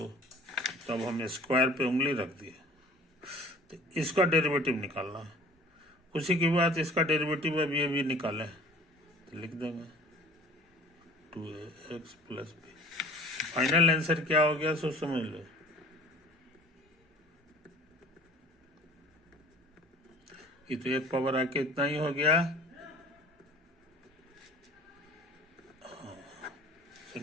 तब हम स्क्वायर पे उंगली रख दिए। तो इसका डेरिवेटिव निकालना है। उसी के बाद इसका डेरिवेटिव अभी निकालें, तो लिख देंगे 2x plus B. Final answer क्या हो गया सो समझ लो। ये तो एक पावर आके इतना ही हो गया,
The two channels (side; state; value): both; normal; correlation 0.48